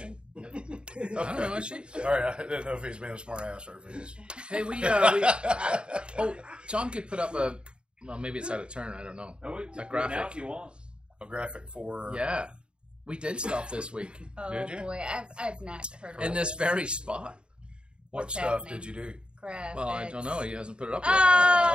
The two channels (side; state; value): left; late; 0.053 ms